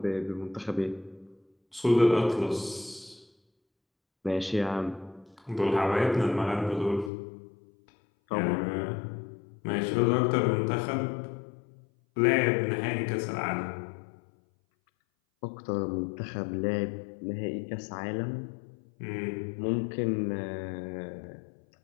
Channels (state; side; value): drops out; right; at 7.1 s